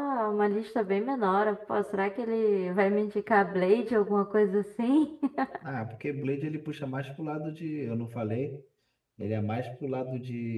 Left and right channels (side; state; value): both; identical; correlation 1.00